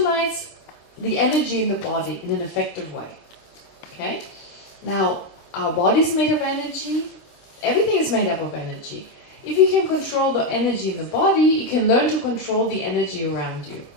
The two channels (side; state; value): right; late; 26 ms